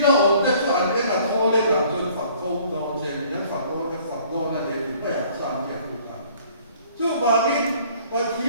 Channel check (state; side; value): inverted; both; correlation -0.56